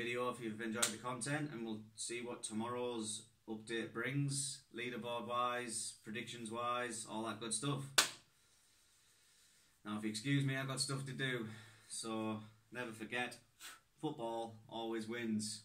if you've enjoyed the content, and we'll see what tomorrow's update brings, leaderboard wise, predictions wise, all that good stuff. Now if you excuse me, I've got stuff to do, so never forget, football always wins.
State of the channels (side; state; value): both; identical; correlation 1.00